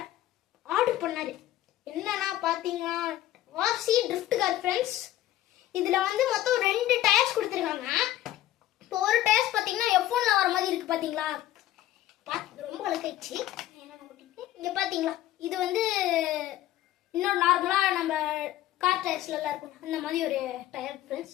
ஆர்டர் பண்ணாரு. என்னன்னா பார்த்தீங்கன்னா வாசி ட்ரிஃப்ட் கார் ஃப்ரெண்ட்ஸ். இதில் வந்து மொத்தம் 2 டயர்ஸ் கொடுத்துருக்காங்க. இப்போ ஒரு டயர்ஸ் பார்த்தீங்கன்னா F1ல வர மாதிரி இருக்கு. பார்த்தீங்களா, பார்த்து ரொம்ப அழுக்காயிடுச்சு. இங்கே பார்த்தீங்களா, இது வந்து இன்னொரு நார்மலாக நம்ம கார் டயர்ஸ்லாம் இருக்கும் அந்த மாதிரி ஒரு டயர் ஃப்ரெண்ட்ஸ்.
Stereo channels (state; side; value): quieter; right; 14.2 dB